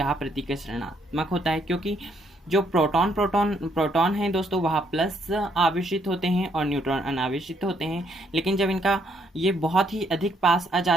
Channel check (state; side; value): normal; both; correlation 0.71